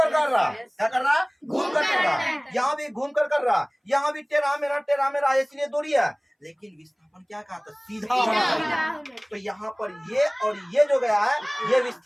रहा है। क्या कर रहा है? घूम कर रहा है। यहाँ भी घूम कर रहा है, यहाँ भी टेढ़ा मेढ़ा, इसलिए दूरी है। लेकिन विस्थापन क्या कहा था? सीधा होना चाहिए। तो यहाँ पर ये और ये जो गया है ये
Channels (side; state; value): both; identical; correlation 1.00